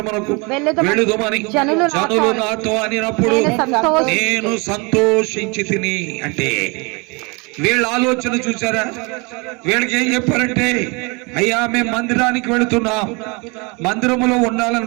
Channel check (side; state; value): left; quieter; 29.0 dB